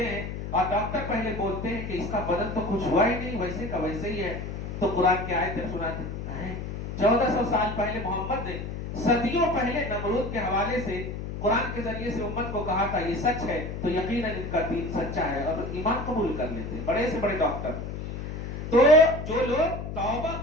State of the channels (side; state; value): left; noise; hum, 6 dB below the sound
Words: ہیں اور ڈاکٹر پہلے بولتے ہیں کہ اس کا بدن تو کچھ ہوا ہی نہیں، ویسے کا ویسے ہی ہے، تو قرآن کی آیتیں سناتے ہیں۔ 1400 سال پہلے محمد نے صدیوں پہلے نمرود کے حوالے سے قرآن کے ذریعے سے امت کو کہا تھا یہ سچ ہے، تو یقیناً ان کا دین سچا ہے اور ایمان قبول کر لیتے ہیں بڑے سے بڑے ڈاکٹر۔ تو جو لوگ توبہ